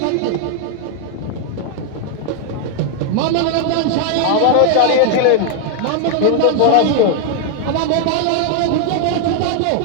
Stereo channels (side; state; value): both; different; correlation 0.00